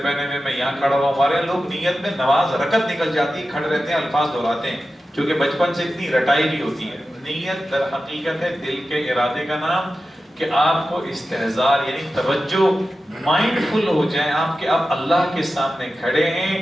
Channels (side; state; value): both; normal; correlation 0.93